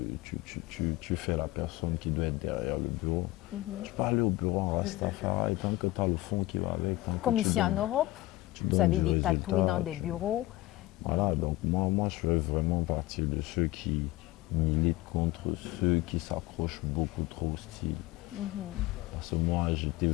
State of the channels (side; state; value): right; quieter; 18.1 dB